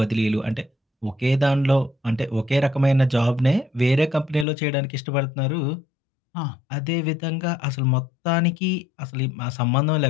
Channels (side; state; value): right; drops out; at 4.5 s